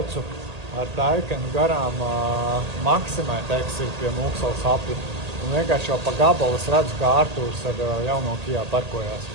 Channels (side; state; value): left; late; 1.8 ms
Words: ar Taikenu garām Maksimai, teiksim, pie Mūksalas apli. Un vienkārši jau pa gabalu es redzu, kā Artūrs ar jauno Kijā parkojās.